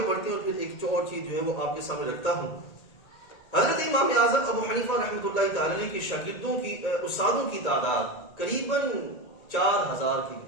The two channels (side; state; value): right; late; 1.9 ms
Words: بڑھتے ہیں اور پھر ایک اور چیز جو ہے وہ آپ کے سامنے رکھتا ہوں. حضرت امام اعظم ابو حنیفہ رحمۃ اللہ تعالی علیہ کے شاگردوں کی استادوں کی تعداد قریباً 4000 کے